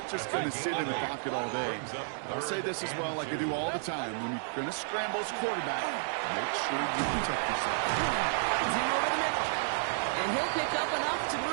just going to sit in the pocket all day. I'll say this as well, like I do all the time. When you're going to scramble as quarterback, make sure you protect yourself. It's him over the middle. And he'll pick up enough to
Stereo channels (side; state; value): left; silent; digital silence